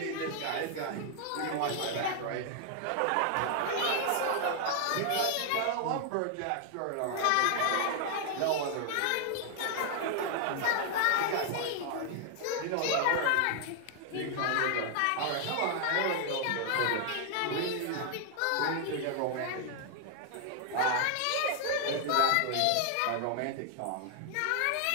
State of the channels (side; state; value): both; different; correlation 0.00